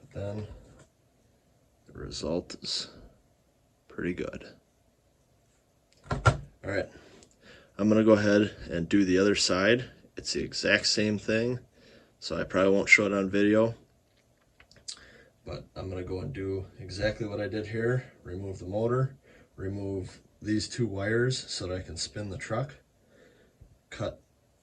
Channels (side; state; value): both; identical; correlation 1.00